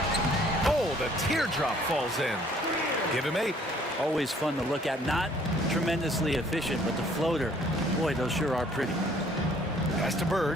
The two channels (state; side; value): normal; both; correlation 0.60